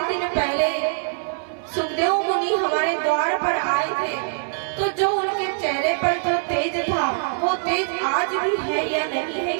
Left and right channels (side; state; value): left; silent; 63 dB below the other